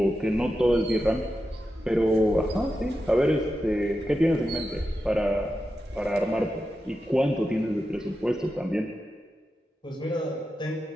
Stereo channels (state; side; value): normal; both; correlation 0.90